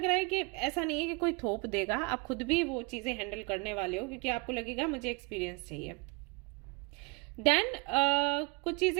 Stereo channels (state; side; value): quieter; left; 28.6 dB